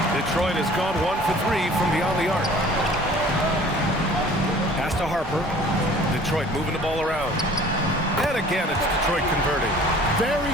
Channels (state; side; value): normal; both; correlation 0.49